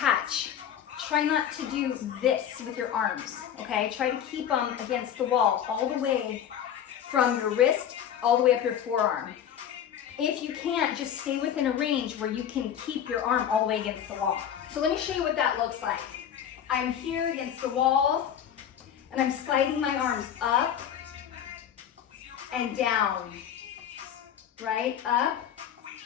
Try not to do this with your arms, okay? Try to keep them against the wall all the way from your wrist all the way up your forearm. If you can't, just stay within a range where you can keep your arm all the way against the wall. So let me show you what that looks like. I'm here against the wall and I'm sliding my arms up and down, right? Up.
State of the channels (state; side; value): quieter; right; 9.4 dB